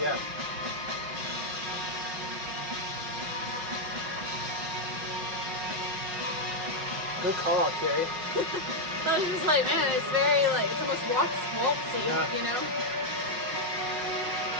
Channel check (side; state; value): left; late; 5.5 ms